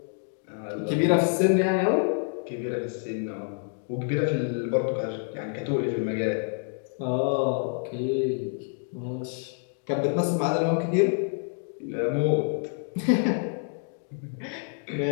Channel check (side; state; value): right; silent; 60 dB below the other